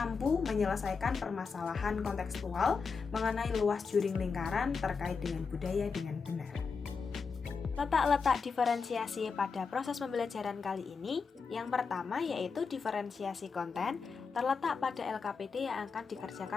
menyelesaikan permasalahan kontekstual mengenai luas juring lingkaran terkait dengan budaya dengan benar. Letak-letak diferensiasi pada proses pembelajaran kali ini, yang pertama yaitu diferensiasi konten, terletak pada LKPD yang akan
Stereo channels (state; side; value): quieter; right; 5.2 dB